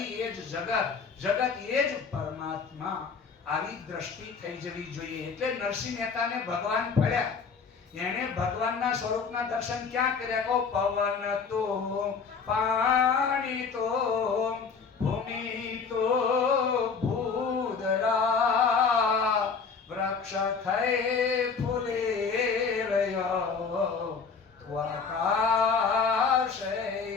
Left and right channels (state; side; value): quieter; right; 5.4 dB